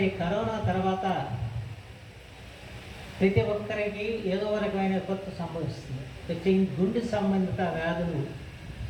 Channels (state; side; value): identical; both; correlation 1.00